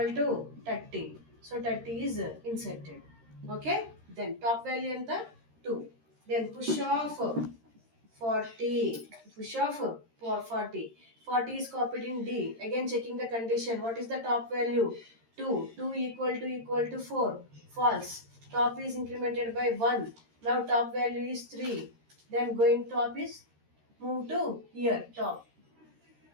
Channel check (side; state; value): left; late; 13 ms